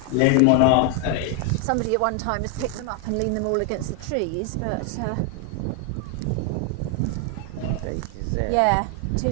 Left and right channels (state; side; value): different; both; correlation 0.00